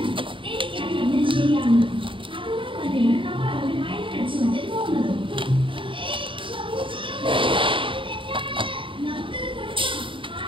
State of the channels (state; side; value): late; left; 0.25 ms